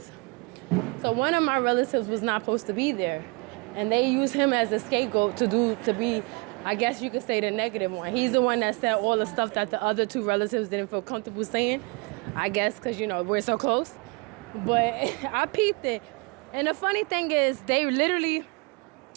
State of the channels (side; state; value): left; quieter; 29.4 dB